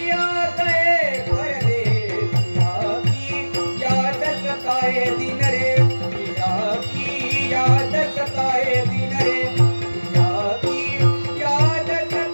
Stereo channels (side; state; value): both; inverted; correlation -1.00